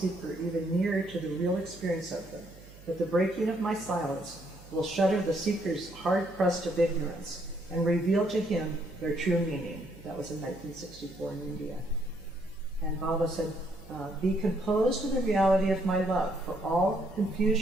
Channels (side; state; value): right; noise; hum, 20 dB below the sound